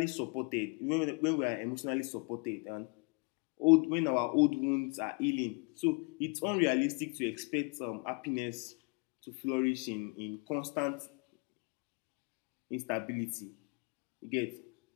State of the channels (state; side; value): quieter; right; 32.8 dB